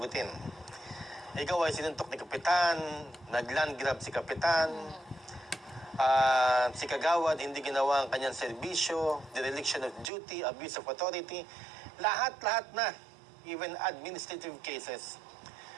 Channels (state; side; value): drops out; left; at 10.1 s